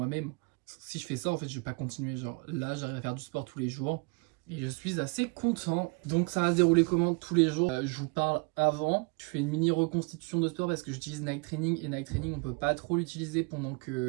Si je fais ça en fait je vais pas continuer, genre là j'arrive à faire du sport tous les jours et je suis assez content. Donc ça va se dérouler comment tous les jours? Je vous parle avant, je fais une mini reconstitution de sport parce que j'utilise Nike Training et Nike Training on peut pas trop l'utiliser pendant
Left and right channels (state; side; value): quieter; left; 30.8 dB